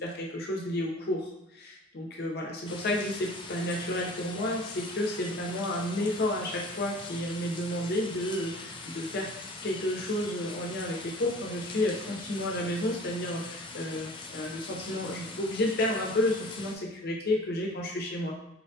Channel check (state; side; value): normal; both; correlation 0.45